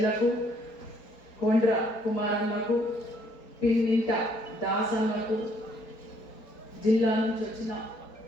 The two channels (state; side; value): late; right; 4.3 ms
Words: కొండ్ర కుమార్ అన్నకు పిన్నింట దాస్ అన్నకు జిల్లా నుంచి వచ్చిన